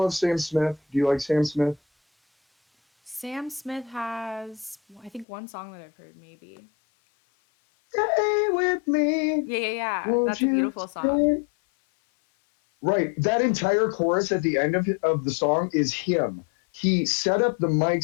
Sam Smith? Do you like Sam Smith? Sam Smith has, I think, one song that I've heard, maybe. Stay with me, Yeah, yeah, yeah. won't That's a you beautiful song. stay? Right. That entire chorus at the end of the song is him. He set up the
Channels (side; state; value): right; drops out; at 5.2 s